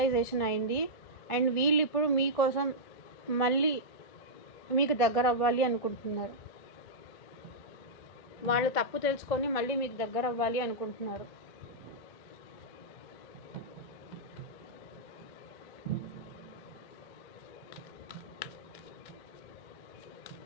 అయింది. అండ్ వీళ్ళు ఇప్పుడు మీకోసం మళ్ళీ మీకు దగ్గర అవ్వాలి అనుకుంటున్నారు. వాళ్ళు తప్పు తెలుసుకొని మళ్ళీ మీకు దగ్గర అవ్వాలి అనుకుంటున్నారు.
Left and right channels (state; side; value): late; right; 1.4 ms